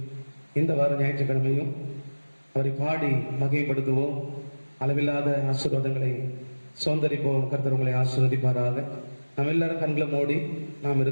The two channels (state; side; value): inverted; both; correlation -1.00